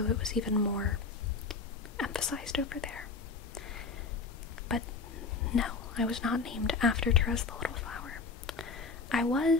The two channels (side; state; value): right; quieter; 4.5 dB